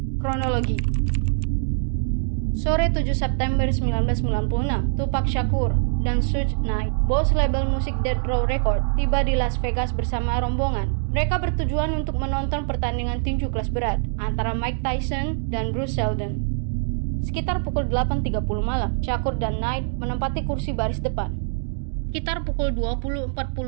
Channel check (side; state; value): left; silent; digital silence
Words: Kronologi. Sore 7 September 1996, Tupac Shakur dan Suge Knight, bos label musik Death Row Records, tiba di Las Vegas bersama rombongan. Mereka bertujuan untuk menonton pertandingan tinju kelas berat antara Mike Tyson dan Bruce Seldon. Sekitar pukul 8.30 malam, Shakur dan Knight menempati kursi baris depan. Sekitar pukul 20.40